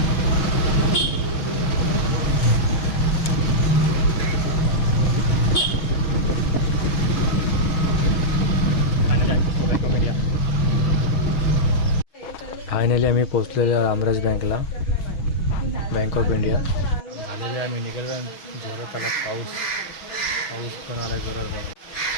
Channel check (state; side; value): late; right; 6.3 ms